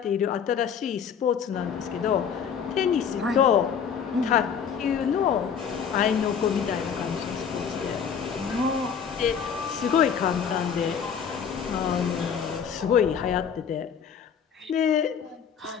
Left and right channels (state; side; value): quieter; right; 7.4 dB